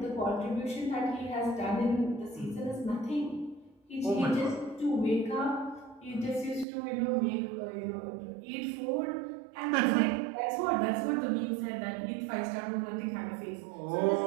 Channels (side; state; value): left; drops out; at 6.7 s